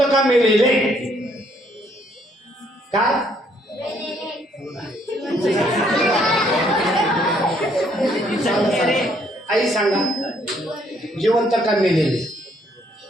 का मेलेले? काय आई सांगा, जिवंत का मेलेले?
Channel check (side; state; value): both; normal; correlation 0.67